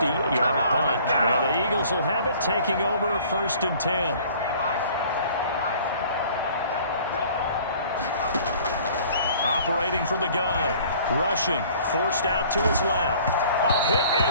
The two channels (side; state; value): both; inverted; correlation -0.52